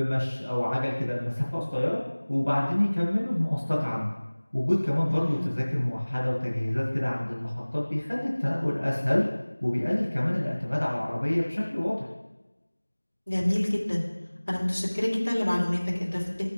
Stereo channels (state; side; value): inverted; both; correlation -1.00